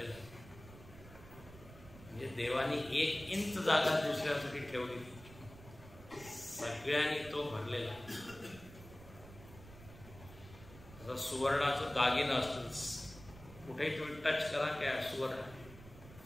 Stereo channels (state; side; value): noise; right; rumble, 17 dB below the sound